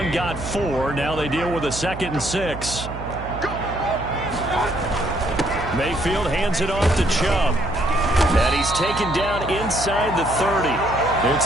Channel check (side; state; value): right; noise; hum, 10 dB below the sound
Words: got 4. Now they deal with a 2nd and 6. Mayfield hands it off to Chubb. And he's taken down inside the 30.